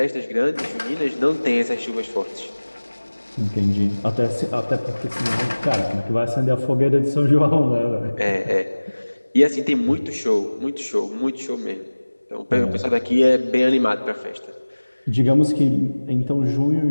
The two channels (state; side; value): inverted; both; correlation -1.00